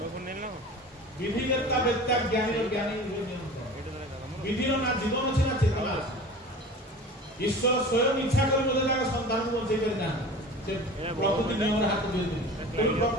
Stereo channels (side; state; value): both; normal; correlation 0.38